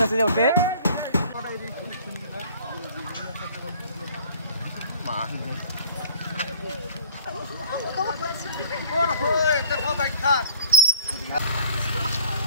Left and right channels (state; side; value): inverted; both; correlation -0.54